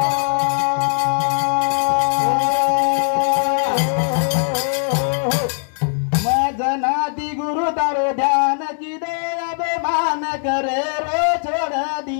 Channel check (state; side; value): silent; right; digital silence